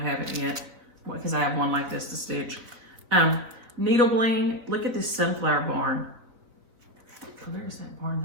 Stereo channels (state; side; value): late; left; 4.0 ms